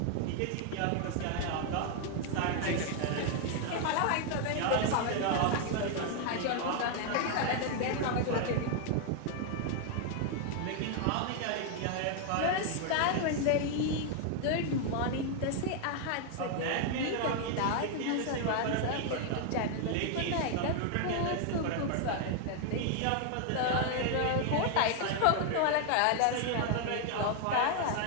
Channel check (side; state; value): both; different; correlation 0.00